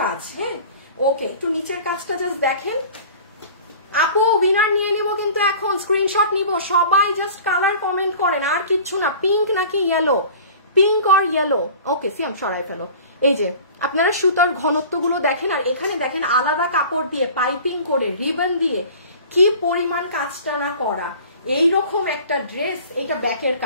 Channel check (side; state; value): both; inverted; correlation -0.43